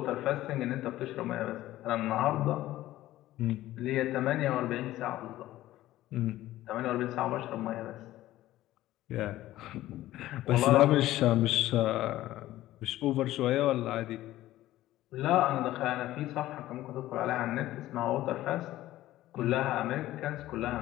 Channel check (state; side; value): quieter; right; 15.2 dB